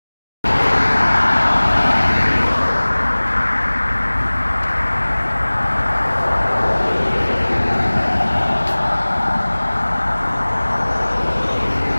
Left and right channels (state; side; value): inverted; both; correlation -1.00